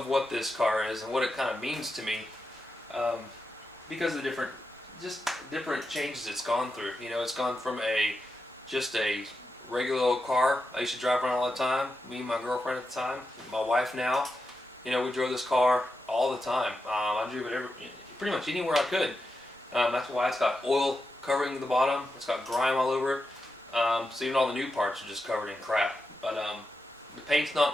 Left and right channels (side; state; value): both; normal; correlation 0.88